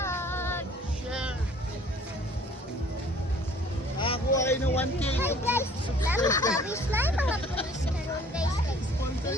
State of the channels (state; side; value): normal; both; correlation 0.53